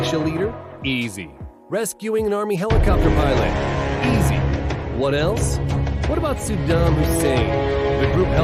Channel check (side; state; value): both; identical; correlation 1.00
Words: leader? Easy. Rescuing an army helicopter pilot? Easy. What else? What about Saddam Hussein? The group